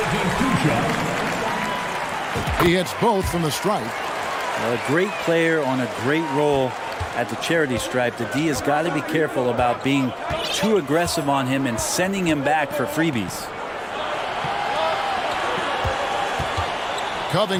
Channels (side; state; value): both; identical; correlation 1.00